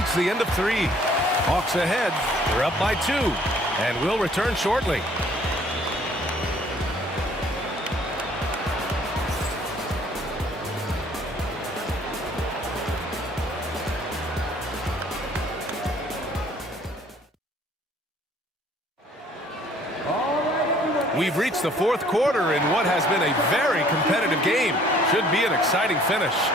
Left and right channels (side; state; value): both; normal; correlation 0.58